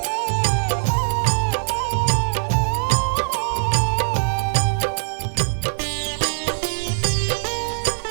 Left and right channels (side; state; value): left; silent; digital silence